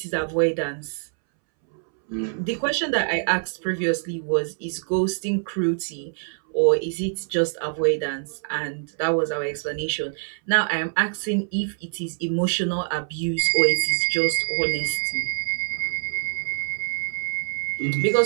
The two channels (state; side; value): silent; left; 62 dB below the other